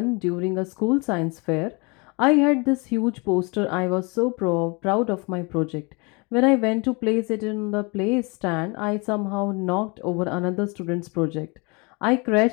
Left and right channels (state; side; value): quieter; right; 29.7 dB